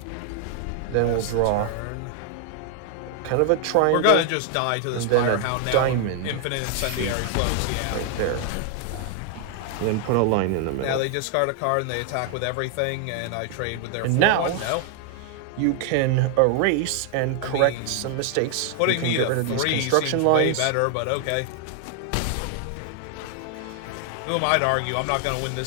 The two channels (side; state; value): both; different; correlation 0.00